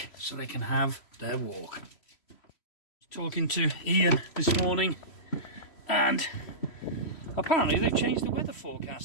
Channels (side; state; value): right; late; 3.0 ms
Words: so they can have their walk. Talking to Ian this morning, and apparently they've changed the weather